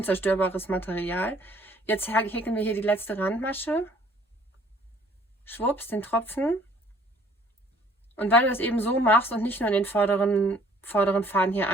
Material. Jetzt häkeln wir hier die letzte Randmasche. Schwupps, den Tropfen. Und weil du das eben so machst und nicht nur in den vorderen Faden hier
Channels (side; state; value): both; normal; correlation 0.58